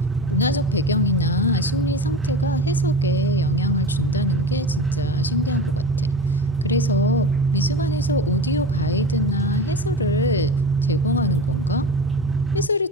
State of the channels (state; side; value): normal; both; correlation 0.29